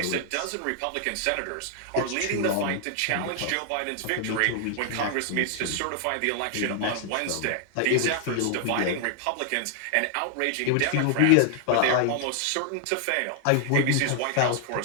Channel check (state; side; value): different; both; correlation 0.00